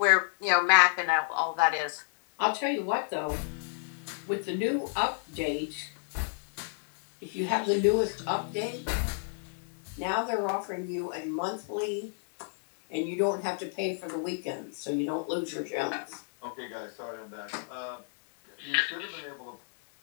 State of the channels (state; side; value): silent; right; digital silence